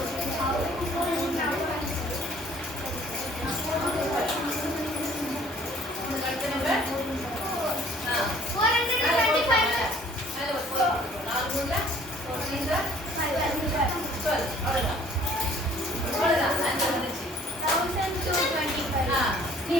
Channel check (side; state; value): both; normal; correlation 0.55